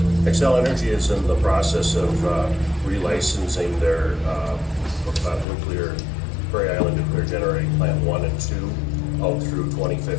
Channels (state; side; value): drops out; right; at 5.5 s